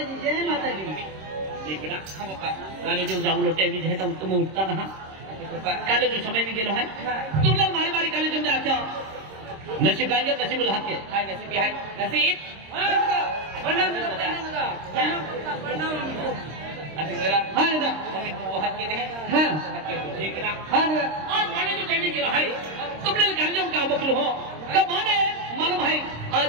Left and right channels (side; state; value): left; late; 26 ms